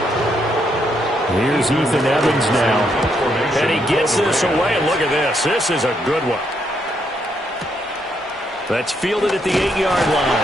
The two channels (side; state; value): both; normal; correlation 0.76